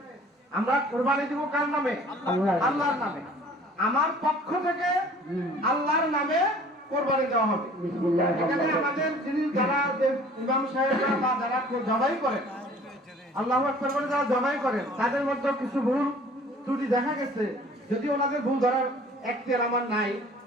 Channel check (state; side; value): normal; both; correlation 0.50